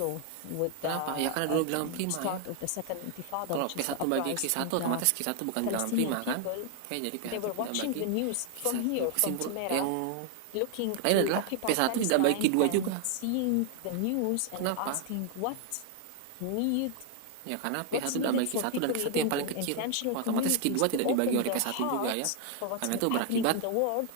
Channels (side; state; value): both; different; correlation 0.00